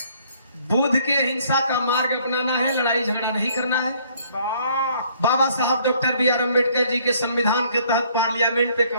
बुद्ध के हिंसा का मार्ग अपनाना है, लड़ाई झगड़ा नहीं करना है। बाबा साहब doctor B are Ambedkar ji के संविधान के तहत पार्लियामेंट पे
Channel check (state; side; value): inverted; both; correlation -0.62